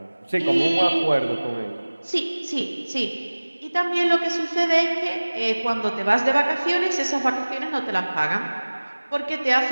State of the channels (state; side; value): inverted; both; correlation -1.00